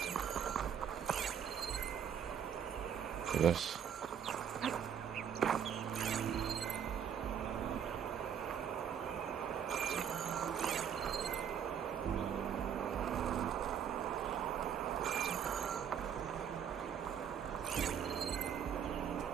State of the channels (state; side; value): quieter; left; 8.3 dB